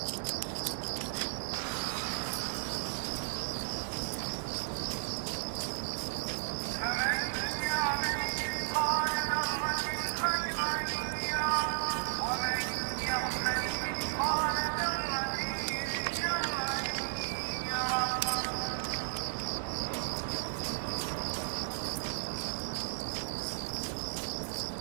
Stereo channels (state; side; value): silent; left; digital silence